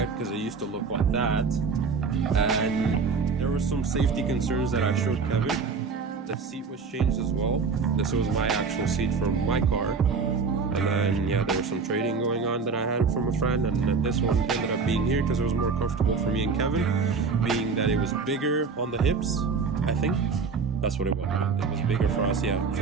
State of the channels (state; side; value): quieter; left; 5.0 dB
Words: because it used to look like that, and there were some safety concerns that I showed Kevin. The seat was changed as well. This was my actual seat from my car. And then, there was some trading going on that I had from a friend, and then this one ended up being here because it was more comfortable for me and Kevin, being that it was bigger on the hips, I think. That's what it was. It was bigger for us, So